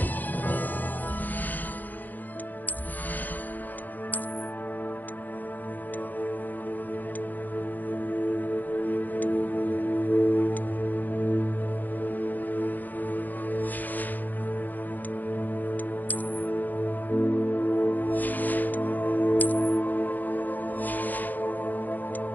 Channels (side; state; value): right; late; 0.084 ms